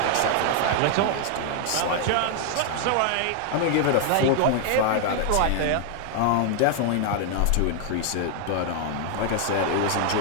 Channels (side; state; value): both; different; correlation 0.00